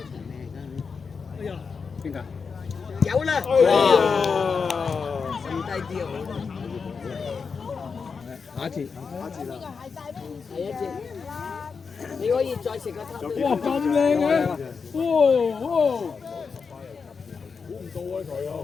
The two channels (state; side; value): quieter; right; 5.4 dB